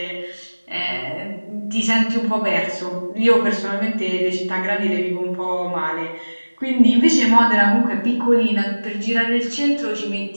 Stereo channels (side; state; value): both; inverted; correlation -1.00